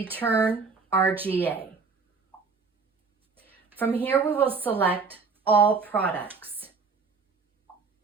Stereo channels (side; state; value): left; quieter; 4.8 dB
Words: RGA. From here, we will select All Products.